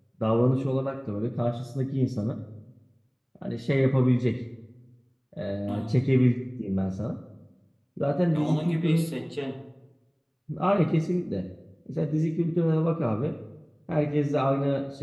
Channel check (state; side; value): identical; both; correlation 1.00